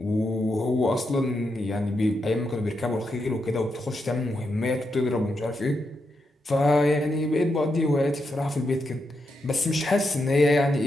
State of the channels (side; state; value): both; normal; correlation 0.84